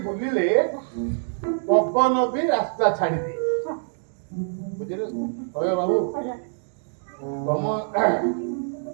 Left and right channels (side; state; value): left; silent; digital silence